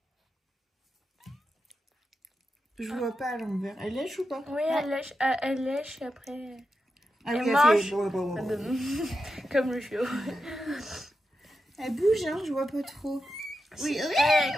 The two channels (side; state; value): both; normal; correlation 0.89